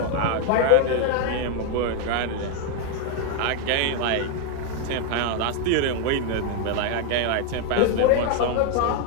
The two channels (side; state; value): both; different; correlation 0.01